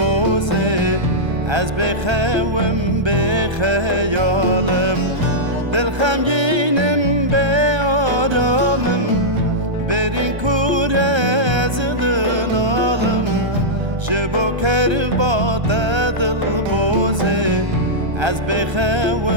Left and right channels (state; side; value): late; left; 1.3 ms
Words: از بخوام بخیالم دل خمگینم به آرامم برین کوره از دنالم جبو کربات دل بوزه از